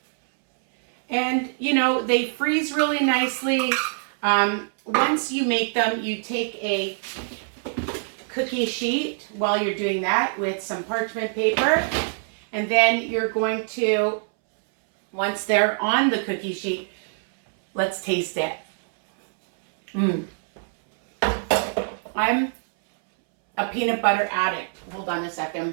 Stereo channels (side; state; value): left; silent; 63 dB below the other